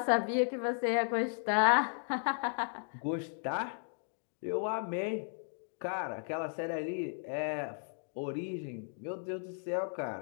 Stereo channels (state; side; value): silent; right; 54 dB below the other